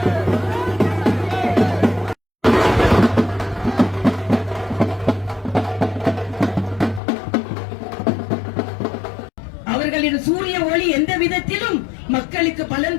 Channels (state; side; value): drops out; right; at 7.0 s